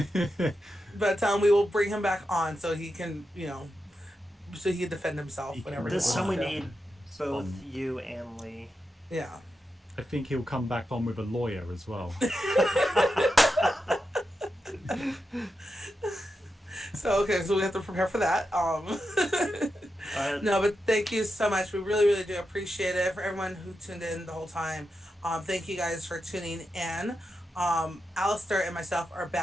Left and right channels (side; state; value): both; normal; correlation 0.88